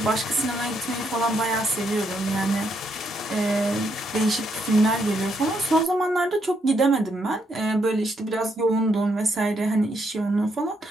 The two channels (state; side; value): normal; both; correlation 0.76